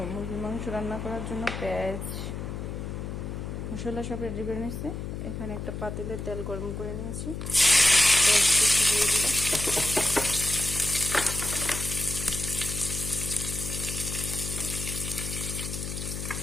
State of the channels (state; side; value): noise; left; hum, 6 dB below the sound